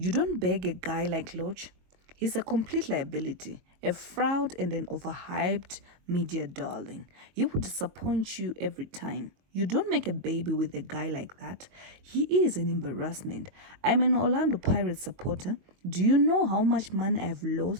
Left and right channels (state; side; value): late; left; 22 ms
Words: don't beg a guy like Lorch. He's a complete liability, a fraud and an overhyped media darling. He will disappoint you every time. You don't make a baby with a guy like that. He is an embarrassment. I'm an Orlando Pirates supporter. Do you know how much money I've